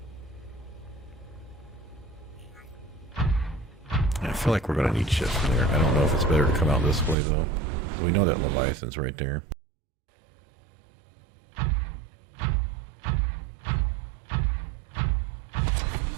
I feel feel like we're going to need shift from there. I don't know if it's better to come out this way, though. We know that Leviathan's right there.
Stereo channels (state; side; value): drops out; left; at 7.2 s